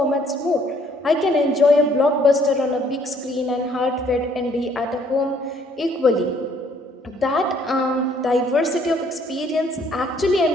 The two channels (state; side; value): normal; both; correlation 0.63